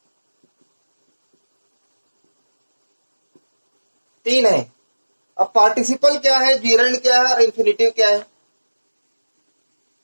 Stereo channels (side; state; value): both; inverted; correlation -1.00